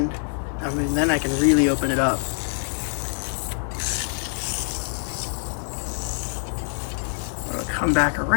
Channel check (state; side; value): silent; right; 62 dB below the other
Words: I mean, then I can really open it up. I'm gonna come back